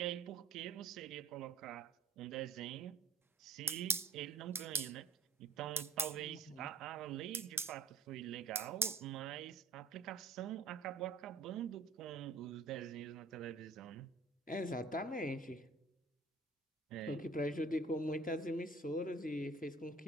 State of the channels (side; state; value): left; quieter; 3.3 dB